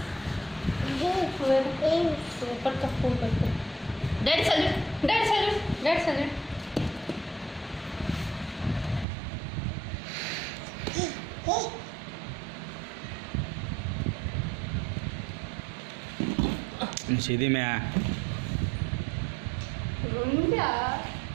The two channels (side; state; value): left; drops out; at 9.1 s